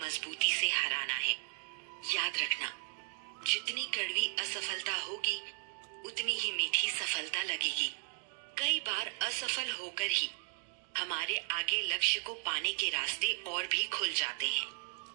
मजबूती से हराना है। याद रखना, जितनी कड़वी असफलता होगी उतनी ही मीठी सफलता लगेगी। कई बार असफल होकर ही हमारे आगे लक्ष्य को पाने के रास्ते और भी खुल जाते हैं।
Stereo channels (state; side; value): quieter; left; 39.1 dB